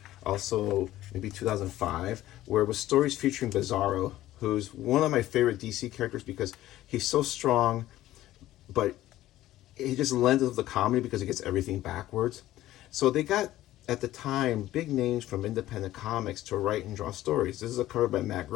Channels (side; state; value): right; quieter; 14.7 dB